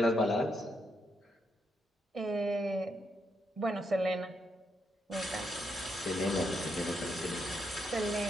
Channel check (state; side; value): normal; both; correlation 0.79